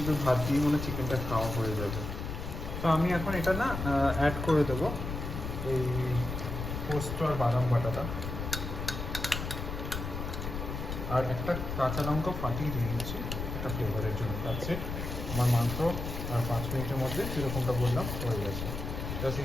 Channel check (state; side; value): noise; left; rumble, 5 dB below the sound